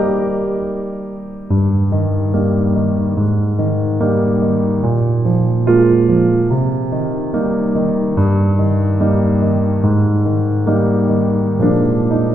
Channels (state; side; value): normal; both; correlation 0.84